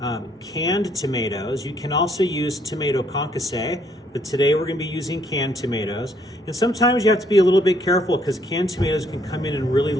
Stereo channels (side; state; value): both; normal; correlation 0.68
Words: canned tomatoes. You can also use tomato concasse, but today we're going to be using canned tomatoes. And sometimes you have to be a little bit careful because canned tomatoes can come in really